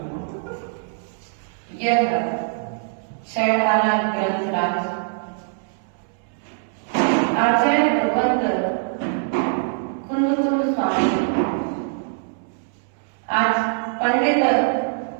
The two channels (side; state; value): left; silent; 64 dB below the other